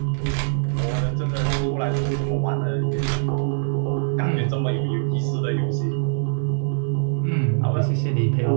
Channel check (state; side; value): silent; left; 58 dB below the other